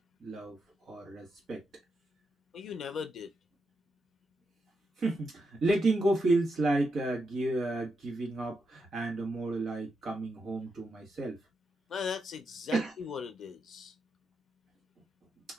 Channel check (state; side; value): normal; both; correlation 0.84